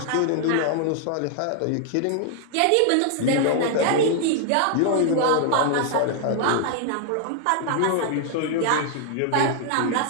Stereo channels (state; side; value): different; both; correlation 0.00